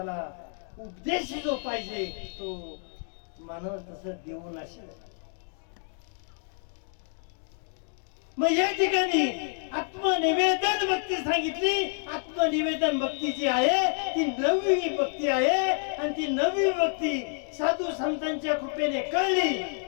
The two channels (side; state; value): right; silent; 55 dB below the other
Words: उपदेश जो पाहिजे तो मानव तसं देऊ नसेल. मग या ठिकाणी आत्मनिवेदन भक्ती सांगितली. आत्मनिवेदन भक्ती जी आहे ती 9वी भक्ती आहे, आणि ती 9वी भक्ती साधू संतांच्या कृपेने कळली.